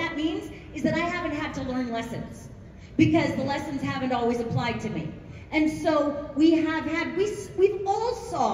means is that I haven't had to learn lessons, because the lessons haven't always applied to me. And so we've all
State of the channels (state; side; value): identical; both; correlation 1.00